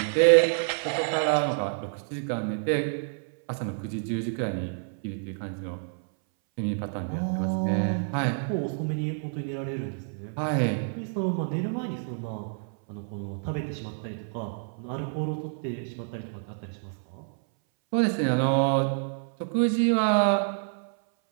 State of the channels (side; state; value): left; silent; 59 dB below the other